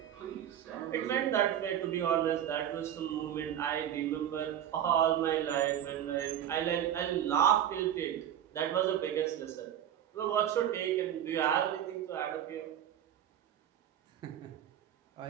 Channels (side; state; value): left; quieter; 10.5 dB